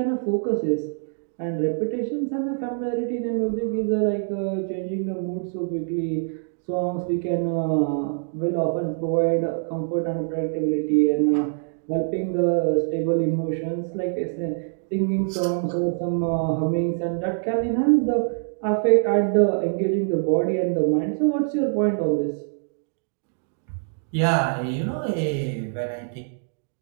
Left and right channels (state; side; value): silent; left; digital silence